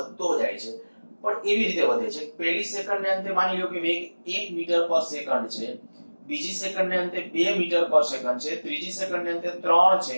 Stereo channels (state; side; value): inverted; both; correlation -1.00